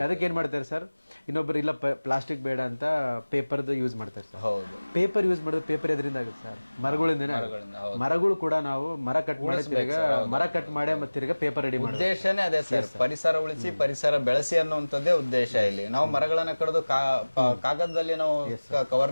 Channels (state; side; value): inverted; both; correlation -1.00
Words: ಅದಕ್ಕೆ ಏನ್ ಮಾಡ್ತಾರೆ ಸರ್, ಇನ್ನೊಬ್ರು ಇಲ್ಲ ಪ್ಲಾಸ್ಟಿಕ್ ಬೇಡ ಅಂತ ಪೇಪರ್ದು ಯೂಸ್ ಮಾಡ್ತಾರೆ ಸರ್. ಪೇಪರ್ ಯೂಸ್ ಮಾಡಿದ್ರೆ ಪೇಪರ್ ಎದರಿಂದ ಆಗುತ್ತೆ ಸರ್? ಮರಗಳಿಂದನೇ. ಮರಗಳು ಕೂಡ ನಾವು ಮರ ಕಟ್ ಮಾಡಿ ಮತ್ತೆ ತಿರ್ಗಾ ಪೇಪರ್ ರೆಡಿ ಮಾಡಿ. ಉದ್ದೇಶನೇ ಅದೇ ಸರ್, ಪರಿಸರ ಉಳಿಸಿ ಪರಿಸರ ಬೆಳೆಸಿ ಅನ್ನುವಂಥದ್ದೇ ಉದ್ದೇಶ ಇಲ್ಲಿ. ನಾವು ಮರಗಳನ್ನ ಕಡಿದು ಕಾಗದದಲ್ಲಿ ನಾವು